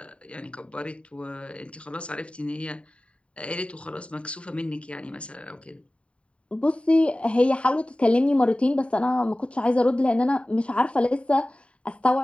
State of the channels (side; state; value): right; late; 0.061 ms